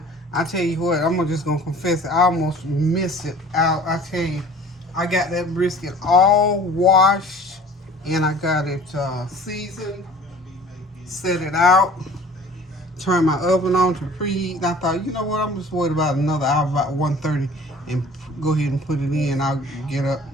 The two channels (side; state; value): both; normal; correlation 0.47